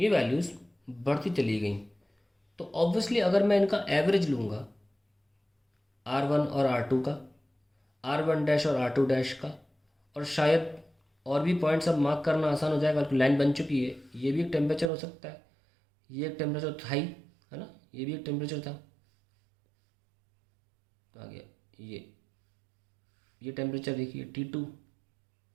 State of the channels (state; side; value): drops out; left; at 14.9 s